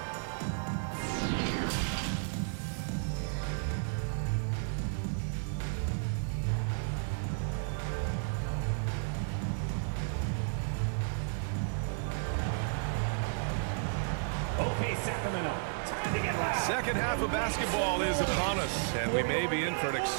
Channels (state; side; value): silent; left; digital silence